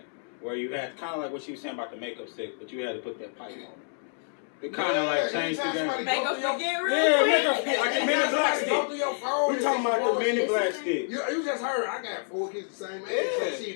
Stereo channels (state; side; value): silent; right; digital silence